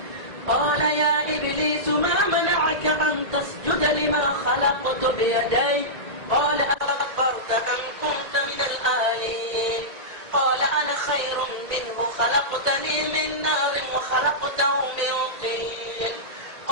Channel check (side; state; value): left; late; 1.9 ms